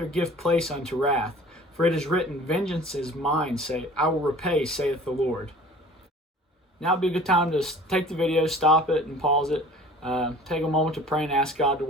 give place unto wrath. For it is written, Vengeance is mine, I will repay, saith the Lord." Now would be a good time to take the video, stop it, and pause it. Take a moment to pray and ask God to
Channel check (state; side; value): normal; both; correlation 0.46